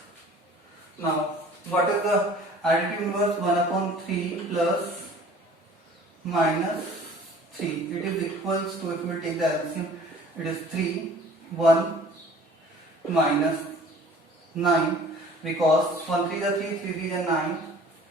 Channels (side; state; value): both; normal; correlation 0.49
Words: Now what is the additive inverse? 1/3 plus minus 3. It is equals to, if we take the LCM, it is 3, 1 minus 9, because 1 3 is 3, 3 3 is 9.